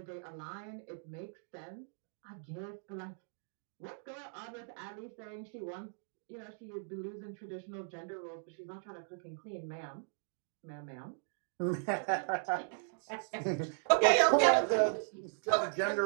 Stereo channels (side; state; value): left; silent; digital silence